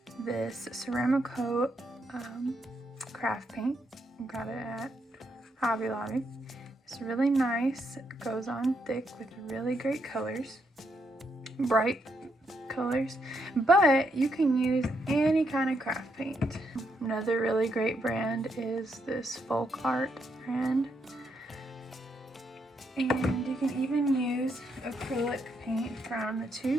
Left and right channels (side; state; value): both; normal; correlation 0.78